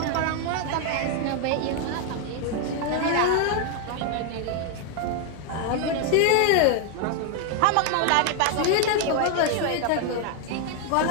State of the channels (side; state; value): both; different; correlation 0.00